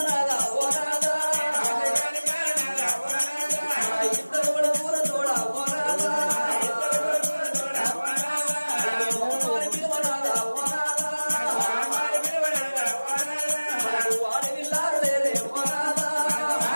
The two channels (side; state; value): both; inverted; correlation -1.00